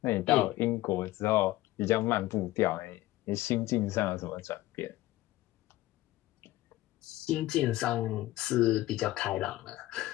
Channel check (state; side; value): quieter; right; 16.6 dB